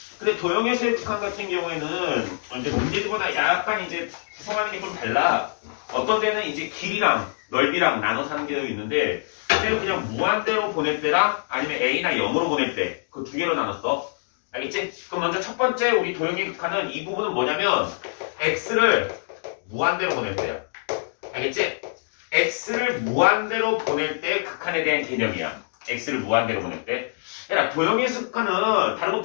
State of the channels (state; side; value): silent; right; digital silence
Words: 근데 도형에서의 극한 같은 경우에는 이제 문제들보다 약간 이제 구성하는 게 좀 달라. 어떤 데는 이제 길이랑 넓이랑 나눠서 하는 게 있는데 그냥 무한대로 보낼 때랑 아니면 A나 0으로 보낼 때 그 두 개로 나눴어. 알겠지? 그럼 먼저 첫 번째 우리 도형의 극한은 이 부분은 뭐냐면 X를 무한대로 보낼 때야. 알겠지? X를 무한대로 보낼 때 극한에 대한 개념이야. X를 무한대로 보낼 때. 야, 도형의 극한은 다른 거